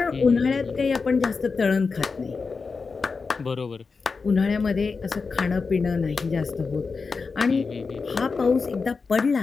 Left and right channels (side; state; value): right; quieter; 4.7 dB